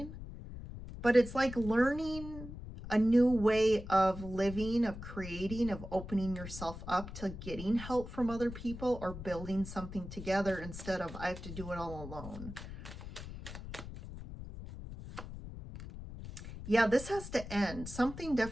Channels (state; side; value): noise; left; rumble, 11 dB below the sound